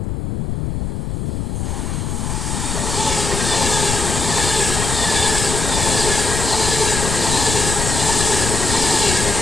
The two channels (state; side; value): noise; left; rumble, 3 dB below the sound